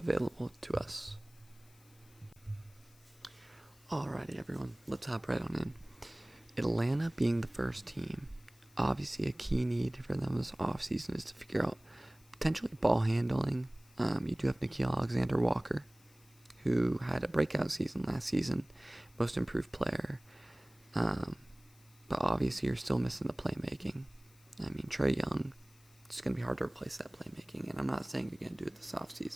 to us. Alrighty, everyone, let's hop right on in. Atlanta being the first team, obviously a key need for them this offseason is to figure out potentially ball handling. You do have Nickeil Alexander-Walker, who had a breakout season last season, most improved player. But obviously you're still missing the playmaking. I mean, Trey Young, it's going to be hard to replace that playmaking, and I'm not saying you're going to do it this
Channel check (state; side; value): noise; left; hiss, 28 dB below the sound